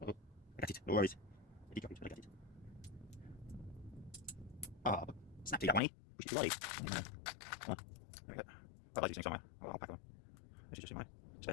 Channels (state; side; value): drops out; right; at 5.8 s